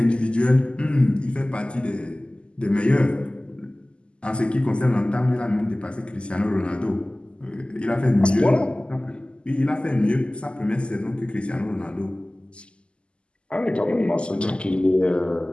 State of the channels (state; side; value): late; right; 0.052 ms